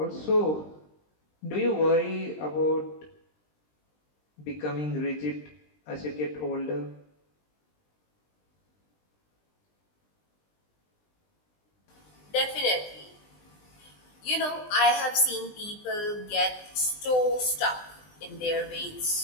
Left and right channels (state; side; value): late; right; 20 ms